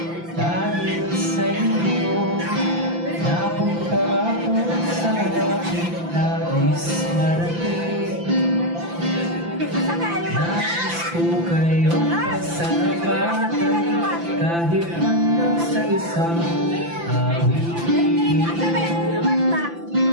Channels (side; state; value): left; late; 5.9 ms